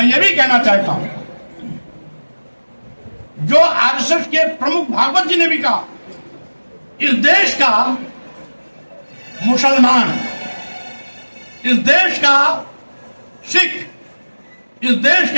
ये भी कहना चाहता हूं, जो आरएसएस के प्रमुख भागवत जी ने भी कहा, इस देश का मुसलमान, इस देश का सिख, इस देश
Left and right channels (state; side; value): inverted; both; correlation -1.00